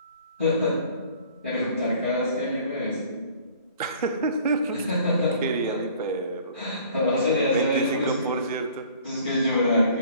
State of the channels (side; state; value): both; inverted; correlation -0.52